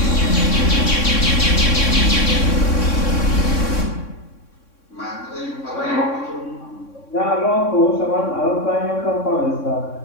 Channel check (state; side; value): late; right; 3.6 ms